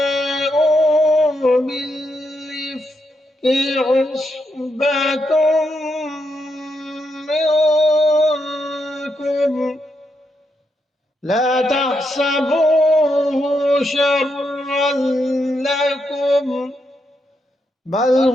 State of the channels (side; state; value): both; normal; correlation 0.81